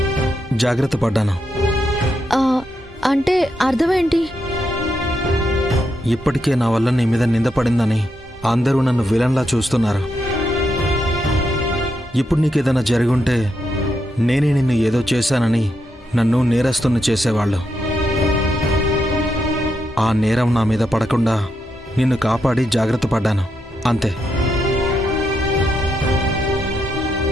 జాగ్రత్త పడ్డాను. అంటే అర్థమేంటి? ఇప్పటికే నా వల్ల నీ మీద నిందపడిందని అందరూ నన్ను విలన్లా చూస్తున్నారు. ఇప్పుడు నీకేదైనా జరుగుంటే నేనే నిన్ను ఏదో చేశానని నన్ను నేరస్తుని చేసేవాళ్ళు. ఆ నేరం నా మీద పడకుండా నిన్ను కాపాడి జాగ్రత్త పడ్డాను, అంతే.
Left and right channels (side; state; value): both; normal; correlation 0.82